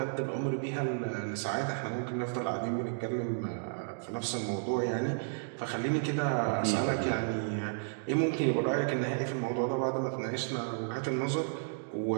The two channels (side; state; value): left; silent; digital silence